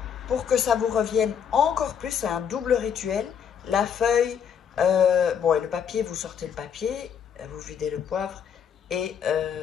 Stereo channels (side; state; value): right; quieter; 7.8 dB